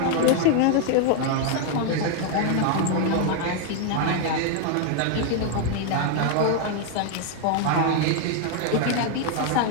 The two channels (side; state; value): both; different; correlation 0.01